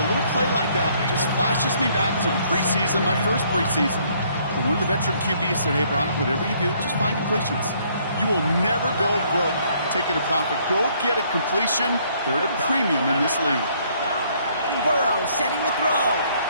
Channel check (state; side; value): inverted; both; correlation -0.65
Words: a little play like that just flashes me back to the preseason, my first preseason. When one of the veteran QBs said, hey, Brock, whatever you do, just find completions. You will never go broke taking a profit. Go get a completion. They're at a premium in this league. Burrow setting the throw.